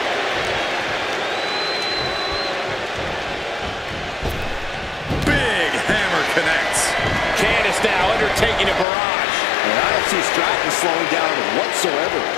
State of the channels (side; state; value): right; drops out; at 8.8 s